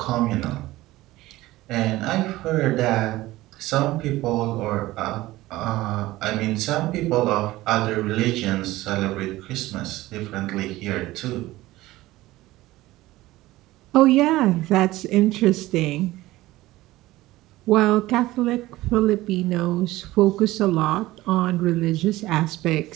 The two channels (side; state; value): left; quieter; 17.6 dB